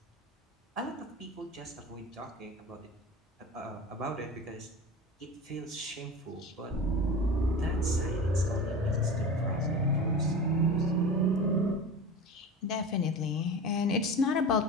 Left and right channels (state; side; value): normal; both; correlation 0.31